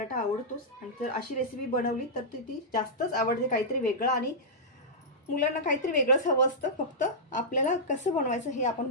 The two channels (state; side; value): normal; both; correlation -0.12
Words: आवडतोच. आणि जर अशी रेसिपी बनवली तर ती जास्तच आवडते. काहीतरी वेगळं, आणि मुलांना काहीतरी वेगळंच हवं असतं. फक्त आपल्याला कसं बनवायचं हे आपण